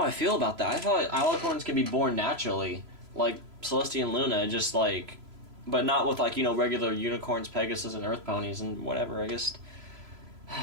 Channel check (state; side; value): late; left; 3.0 ms